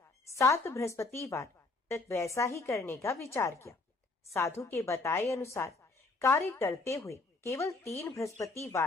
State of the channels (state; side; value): quieter; right; 3.5 dB